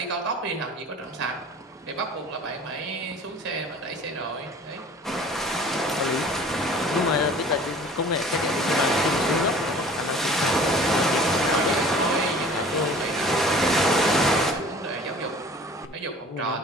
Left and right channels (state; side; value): normal; both; correlation 0.47